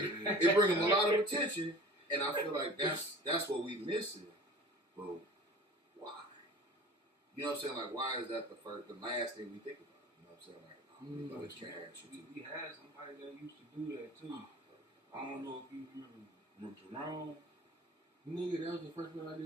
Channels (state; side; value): normal; both; correlation 0.42